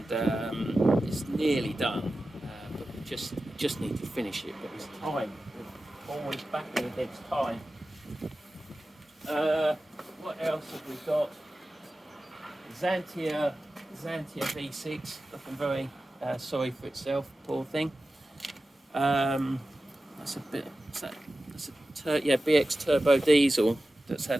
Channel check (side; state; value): both; normal; correlation 0.94